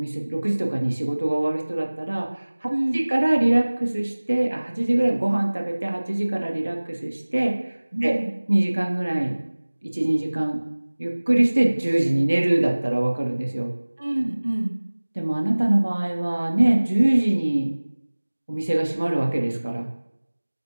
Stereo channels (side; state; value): both; inverted; correlation -1.00